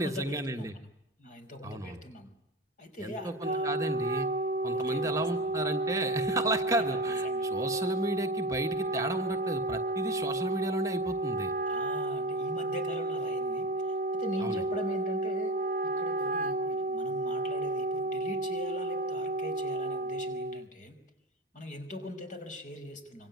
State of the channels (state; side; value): normal; both; correlation 0.26